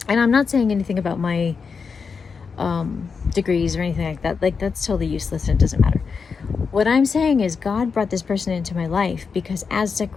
and I'm not saying anything about my degrees or anything like that. Like, that's totally useless and it doesn't matter. What I'm saying is God brought this person into my life because as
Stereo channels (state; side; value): quieter; right; 5.5 dB